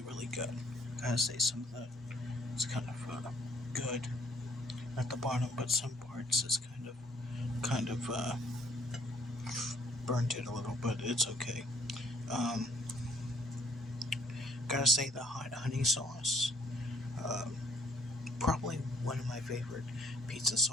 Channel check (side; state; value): both; normal; correlation 0.64